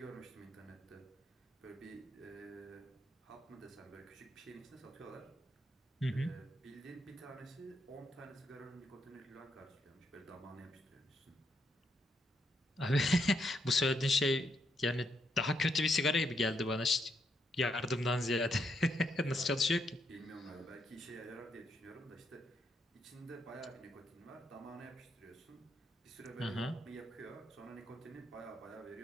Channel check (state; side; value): normal; both; correlation 0.77